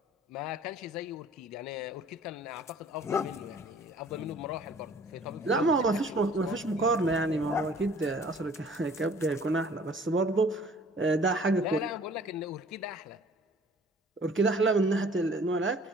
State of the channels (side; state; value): both; normal; correlation 0.52